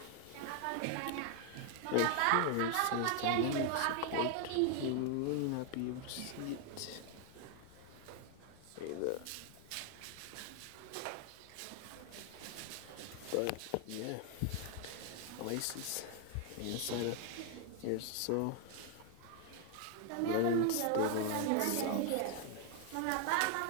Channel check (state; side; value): different; both; correlation 0.00